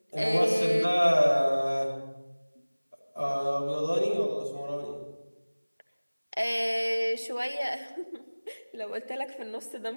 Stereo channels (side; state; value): both; inverted; correlation -1.00